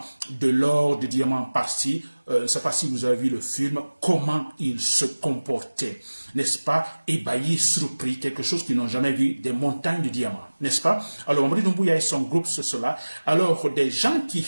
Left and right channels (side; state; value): both; inverted; correlation -1.00